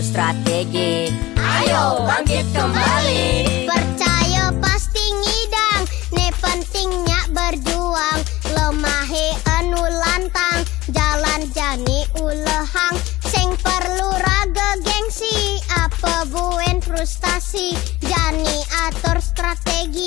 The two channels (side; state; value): right; quieter; 18.4 dB